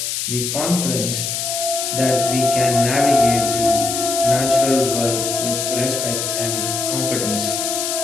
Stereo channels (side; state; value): left; noise; hiss, 2 dB below the sound